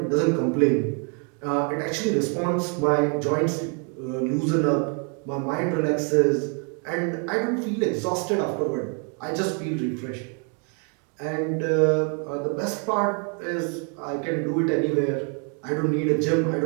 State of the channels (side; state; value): left; quieter; 38.7 dB